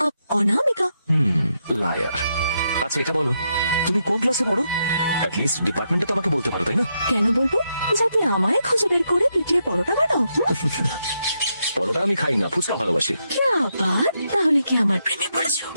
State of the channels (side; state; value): both; inverted; correlation -0.81